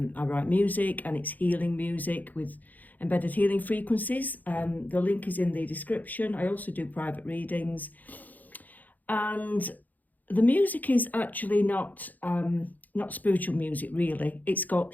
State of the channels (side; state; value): right; late; 0.082 ms